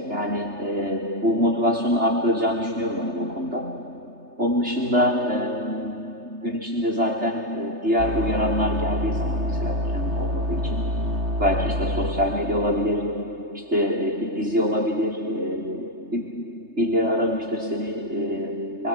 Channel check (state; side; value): late; left; 3.3 ms